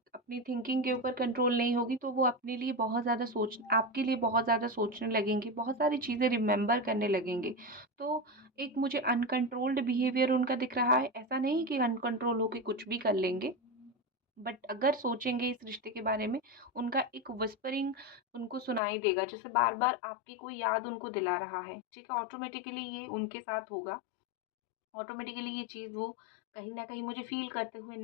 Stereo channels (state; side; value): drops out; right; at 18.8 s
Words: थिंकिंग के ऊपर कंट्रोल नहीं होगी, तो वो अपने लिए बहुत ज़्यादा आपके लिए बहुत ज़्यादा सोचने लगेंगे, बहुत सारी चीज़ें रिमेंबर करने लगेंगे। तो एक मुझे अनकंट्रोल्ड बिहेवियर उनका दिख रहा है, ऐसा नहीं कि अनकंट्रोल होके कुछ भी कर लेंगे, बट अगर सोचेंगे इस रिश्ते के बारे में, उनका एक विस्परिंग उनको सुनाई देगा, जैसे बार-बार आपकी कोई याद उनको दिला रहा है, ठीक है? ऑटोमेटिकली ये उनके साथ होगा। ऑटोमेटिकली ये चीज़ वो कहीं न कहीं मुझे फ़ील करते हुए